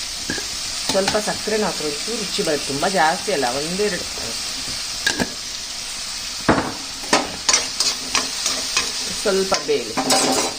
ಸ್ವಲ್ಪ ಸಕ್ಕರೆನ ಹಾಕಿ ಒಂಚೂರು ರುಚಿ ಬರುತ್ತೆ. ತುಂಬ ಜಾಸ್ತಿ ಅಲ್ಲ, ಒಂದೆರಡು. ಸ್ವಲ್ಪ ಬೇಯಲಿ.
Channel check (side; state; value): both; identical; correlation 1.00